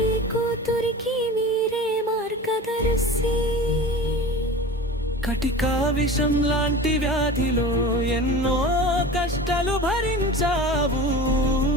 ఈ కూతురికి మీరే మార్గదర్శి. కటికా విషం లాంటి వ్యాధిలో ఎన్నో కష్టాలు భరించావు.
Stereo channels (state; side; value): normal; both; correlation 0.34